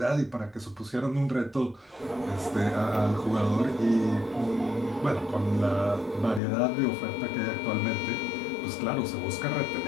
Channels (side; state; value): right; drops out; at 6.4 s